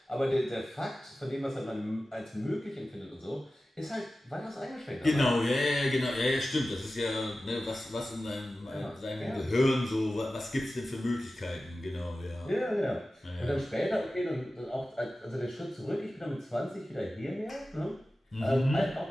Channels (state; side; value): normal; both; correlation 0.95